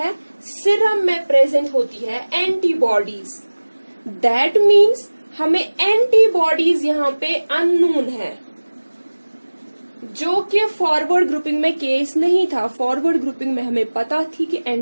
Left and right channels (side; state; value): both; inverted; correlation -1.00